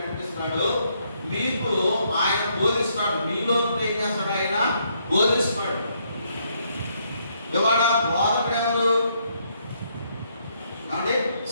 మీకు ఆయన బోధిస్తాడు. మీలో ఏం చేస్తాడు? ఆయన బోధిస్తాడు. ఇవాళ బోధకుడు ఎవరు అంటే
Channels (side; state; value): both; inverted; correlation -0.73